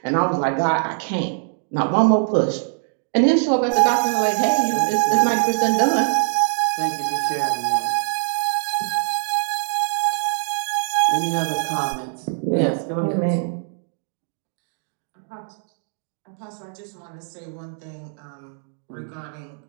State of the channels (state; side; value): silent; left; 64 dB below the other